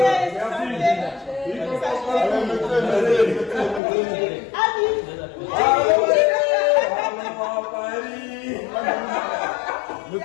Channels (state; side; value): drops out; right; at 3.8 s